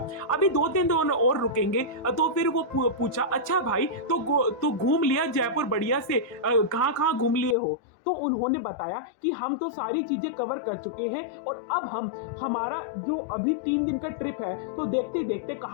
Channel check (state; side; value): drops out; right; at 7.6 s